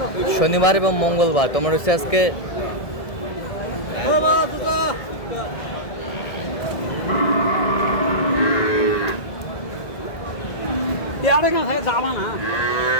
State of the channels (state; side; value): late; right; 1.7 ms